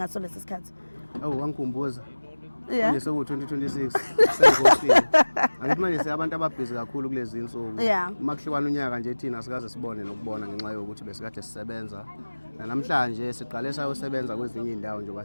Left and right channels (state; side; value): inverted; both; correlation -1.00